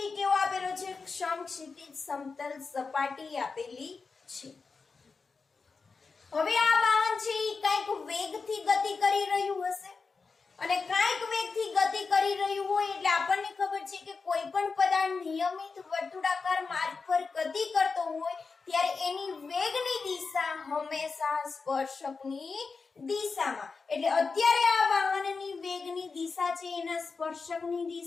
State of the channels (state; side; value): quieter; right; 4.6 dB